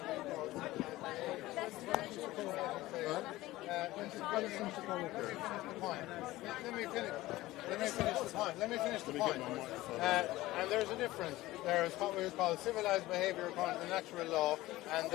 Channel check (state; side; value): quieter; right; 17.6 dB